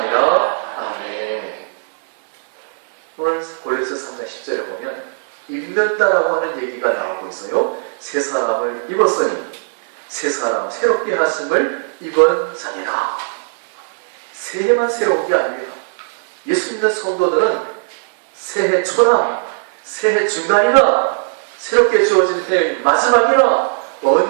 아멘. 오늘 골로새 3장 10절에 보면 입는다라고 하는 얘기가 나오고 있어요. 새 사람을 입었으니 새 사람 새롭게 하심을 입은 자니라. 새해만 새로운 게 아닙니다. 예수 믿는 성도들은 새해 초나 새해 중간이나 새롭게 주어진 해의 마지막이나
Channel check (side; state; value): left; silent; 65 dB below the other